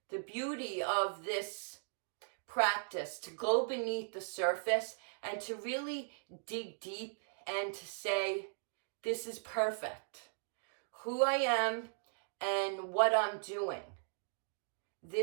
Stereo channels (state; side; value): silent; left; digital silence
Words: The beauty of this practice, to go beneath the surface and to really dig deep and to say, this is perfect. Who I am and what I'm doing.